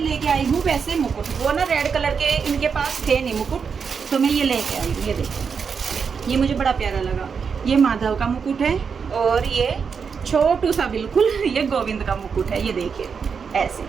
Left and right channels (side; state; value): left; quieter; 6.1 dB